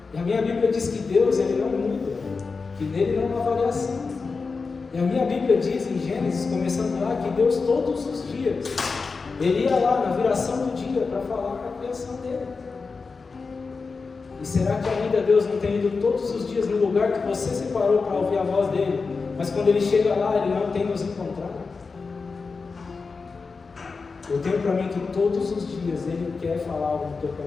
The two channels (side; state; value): right; quieter; 4.5 dB